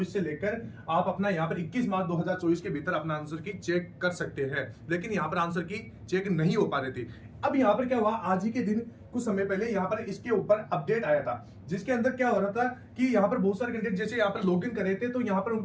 से लेकर आप अपना यहाँ पर 21 मार्च 2024 के भीतर अपना आंसर की चेक कर सकते हैं। लेकिन यहाँ पर आंसर की चेक नहीं हो पा रही थी। अब यहाँ पर क्या हुआ, आज ही के दिन कुछ समय पहले यहाँ पर इसके ऊपर अपडेट आया था, जिसके अंदर क्या हो रहा था कि यहाँ पर बहुत सारे कैंडिडेट जैसे यहाँ पर लॉगिन कर रहे थे तो यहाँ पर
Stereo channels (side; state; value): both; identical; correlation 1.00